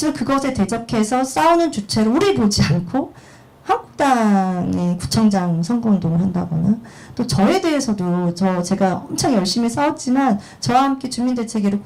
그것에 대적해서 싸우는 주체를 우리 보지 않고 한국당의 구청장 선거운동을 한다거나, 또 저에 대해서도 제가 엄청 열심히 싸웠지만 저와 함께 주민대책위를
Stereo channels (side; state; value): both; identical; correlation 1.00